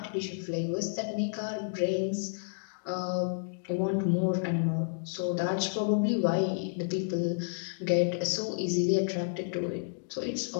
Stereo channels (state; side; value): silent; right; digital silence